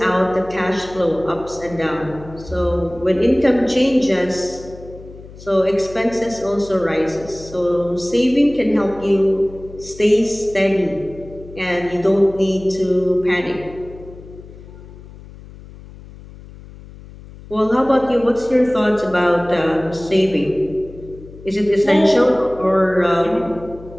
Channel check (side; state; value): left; noise; hum, 18 dB below the sound